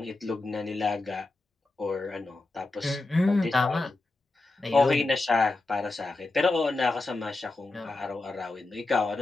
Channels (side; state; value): right; quieter; 3.1 dB